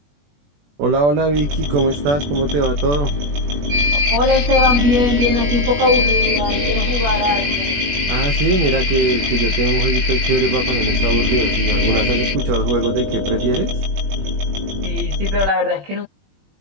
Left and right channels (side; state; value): left; late; 21 ms